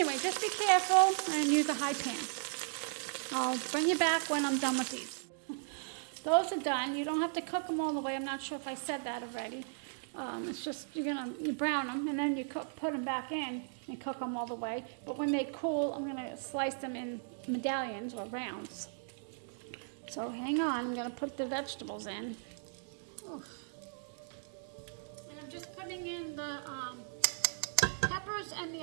just be careful and use a high pan. I'll bring you back when I'm done with these. Those are done. You don't have to cook them all the way. I'm not sure if I said that already. It's just you brown them, and then you put them back in and cook them all the way. But when they cool, I'm gonna slice them in medallions or rounds. So hang on. I'm gonna put the vegetables in. Oof. And I'm just putting in the peppers and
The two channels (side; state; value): left; silent; digital silence